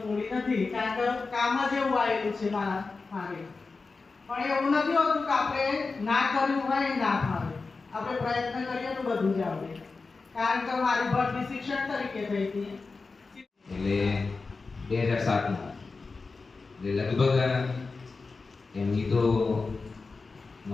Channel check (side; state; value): right; quieter; 4.1 dB